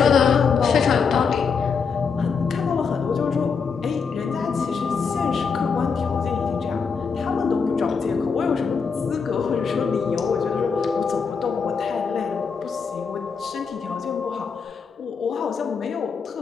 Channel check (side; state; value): right; quieter; 5.7 dB